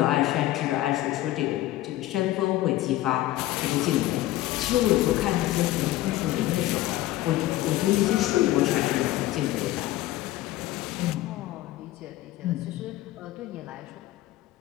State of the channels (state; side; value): quieter; right; 15.8 dB